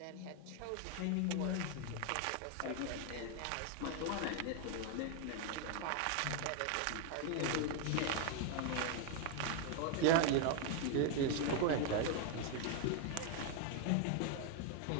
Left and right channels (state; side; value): different; both; correlation 0.01